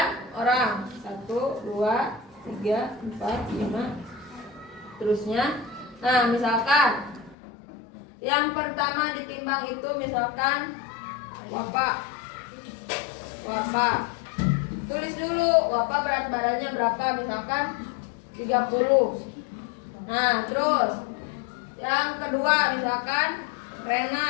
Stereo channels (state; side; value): drops out; right; at 7.4 s